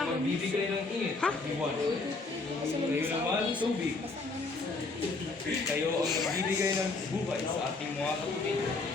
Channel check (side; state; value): right; quieter; 3.6 dB